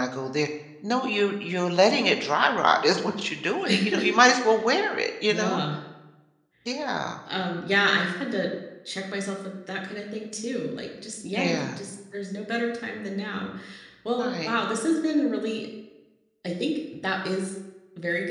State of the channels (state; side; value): identical; both; correlation 1.00